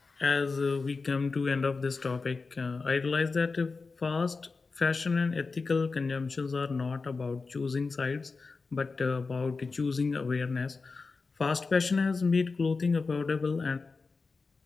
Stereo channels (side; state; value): right; quieter; 4.2 dB